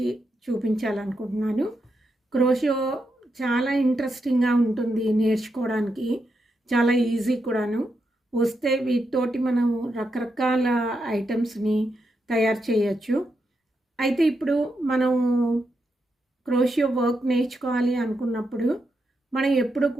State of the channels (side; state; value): both; normal; correlation 0.84